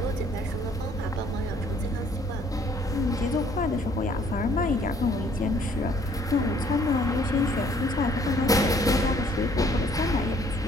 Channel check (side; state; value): both; normal; correlation 0.61